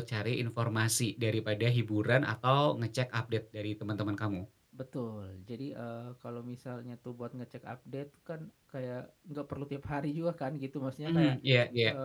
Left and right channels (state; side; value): identical; both; correlation 1.00